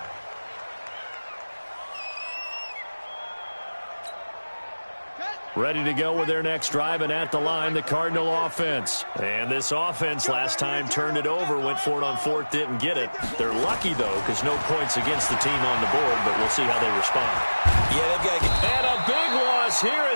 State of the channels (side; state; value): both; inverted; correlation -1.00